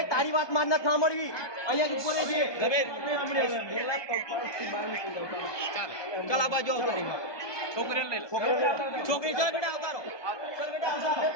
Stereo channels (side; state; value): right; late; 1.2 ms